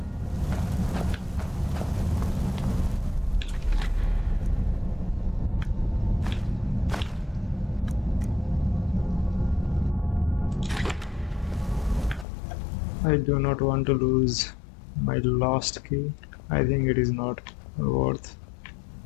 I do not want to lose my last key. I think it is not worth.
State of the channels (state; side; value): drops out; right; at 12.2 s